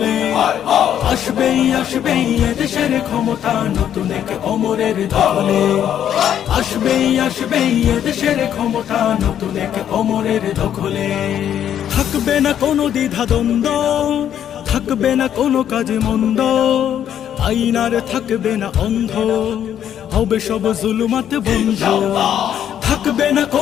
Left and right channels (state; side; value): quieter; right; 10.0 dB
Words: আসবেই এদেশের ক্ষমতা নতুন এক অমরের দখলে। আসবেই এদেশের ক্ষমতা নতুন এক অমরের দখলে। থাকবে না কোনো দ্বিধা দ্বন্দ্ব, থাকবে না কোনো কাজে মন্দ, আইন আর থাকবে না অন্ধ, হবে সব জুলুমাত বন্ধ। থাকবে না